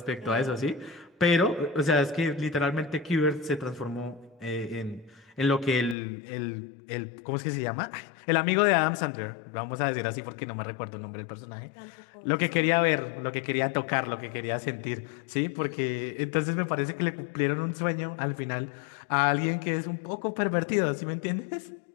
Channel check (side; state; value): right; drops out; at 6.0 s